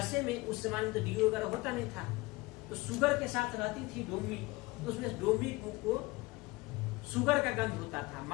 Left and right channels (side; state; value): right; quieter; 22.4 dB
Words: में उस जमाने में तो डीओ वगैरह होता नहीं था, तो शुगर के साथ रहती थी डोमी, तो उसमें डोमी को शुगर का गंध होता था,